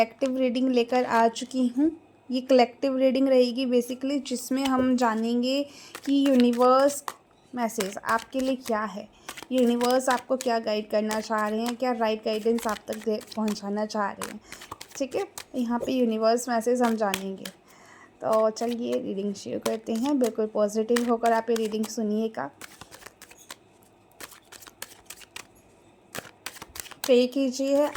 रीडिंग लेकर आ चुकी हूँ। ये कलेक्टिव रीडिंग रहेगी बेसिकली, जिसमें हम जानेंगे कि यूनिवर्स मैसेज आपके लिए क्या है, यूनिवर्स आपको क्या गाइड करना चाह रहे हैं, क्या राइट गाइडेंस आप तक पहुँचाना चाह रहे हैं। ठीक है, यहाँ पे यूनिवर्स मैसेज हम जानेंगे। तो चलिए रीडिंग शुरू करते हैं। बिल्कुल पॉजिटिव होकर आप ये रीडिंग सुनिएगा। पे कीजिए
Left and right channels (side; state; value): both; identical; correlation 1.00